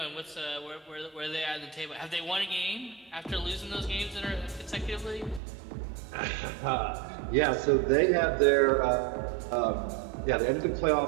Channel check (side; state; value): left; drops out; at 5.4 s